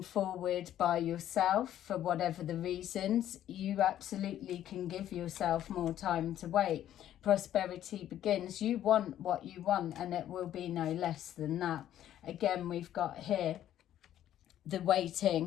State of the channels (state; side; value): quieter; right; 11.7 dB